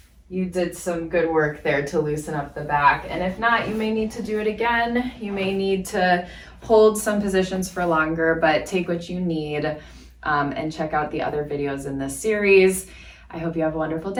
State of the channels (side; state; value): both; identical; correlation 1.00